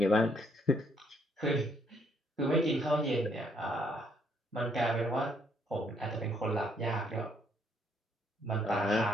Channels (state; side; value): normal; both; correlation 0.69